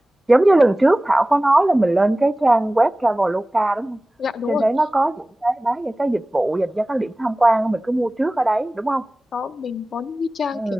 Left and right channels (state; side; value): normal; both; correlation 0.98